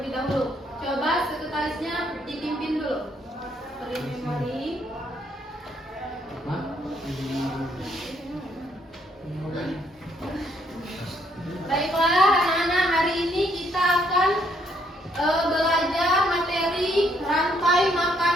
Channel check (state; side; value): normal; both; correlation 0.70